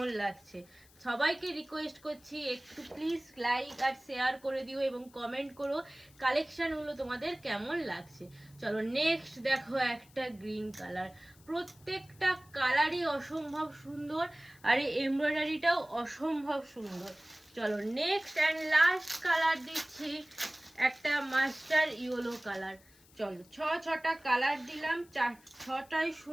লাগছে। সবাইকে রিকোয়েস্ট করছি একটু প্লিজ লাইক আর শেয়ার করে দিও এবং কমেন্ট করো কালেকশানগুলো তোমাদের কেমন লাগছে। চলো নেক্সট দেখো একটা গ্রিন কালার, প্রত্যেকটা কালারই অসম্ভব সুন্দর আর এই এমব্রয়ডারিটাও অসম্ভব সুন্দর। চলো নেক্সট অ্যান্ড লাস্ট কালার দিচ্ছি, একটা মাস্টার ইয়েলো কালার। চলো ছটা কালার দিলাম, ছটাই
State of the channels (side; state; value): left; noise; hiss, 27 dB below the sound